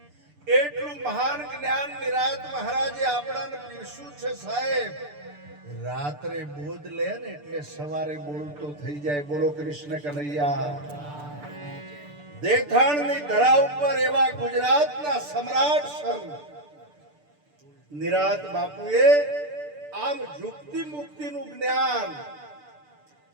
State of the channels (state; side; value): late; left; 6.8 ms